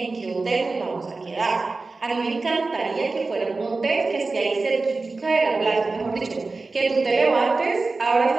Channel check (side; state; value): left; quieter; 3.7 dB